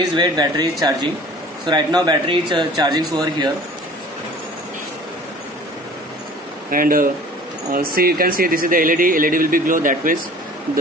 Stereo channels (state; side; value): normal; both; correlation 0.46